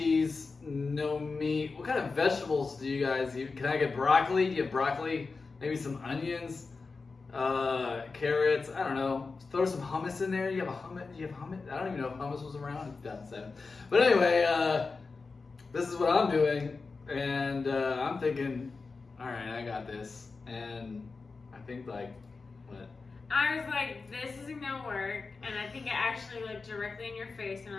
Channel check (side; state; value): right; quieter; 4.3 dB